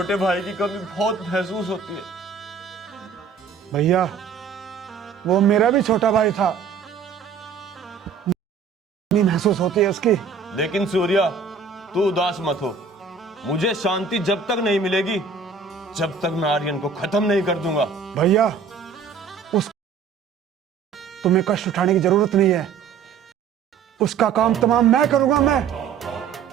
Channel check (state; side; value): quieter; left; 5.8 dB